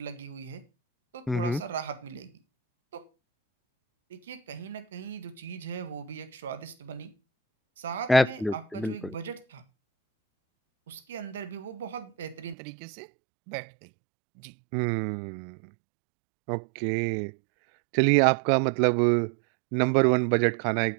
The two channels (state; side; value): drops out; left; at 12.6 s